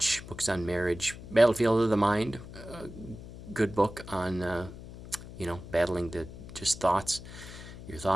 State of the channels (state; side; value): noise; left; hum, 14 dB below the sound